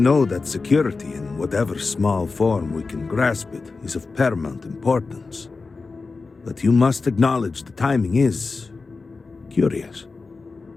that security, in whatever small form we can grasp it, is of paramount importance. But you must acknowledge the timing is curious.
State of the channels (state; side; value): quieter; right; 4.1 dB